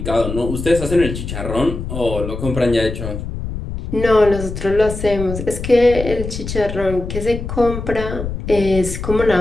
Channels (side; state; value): left; noise; rumble, 7 dB below the sound